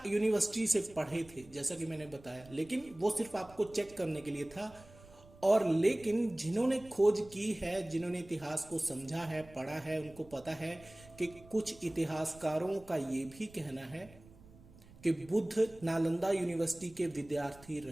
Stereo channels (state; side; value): noise; right; rumble, 22 dB below the sound